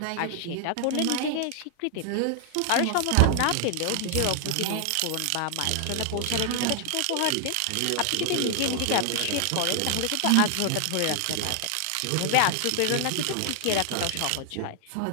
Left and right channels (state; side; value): different; both; correlation 0.00